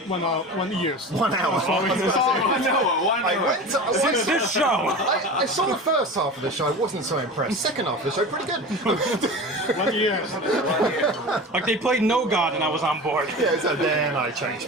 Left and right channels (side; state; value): both; normal; correlation 0.32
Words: 1 hour. I went to, Since this show. I saw the first half of the show, I wasn't so impressed. Second half of the show, pretty good. 1 year. Like they played No God and I was on board. Yeah, so then I changed